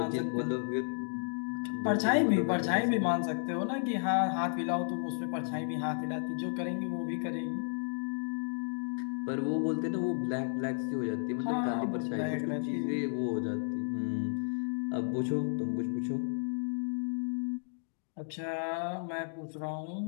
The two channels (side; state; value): right; silent; digital silence